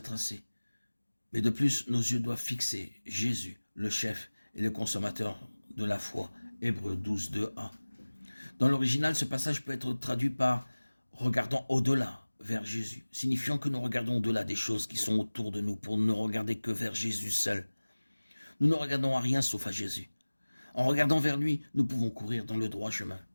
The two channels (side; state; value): both; inverted; correlation -1.00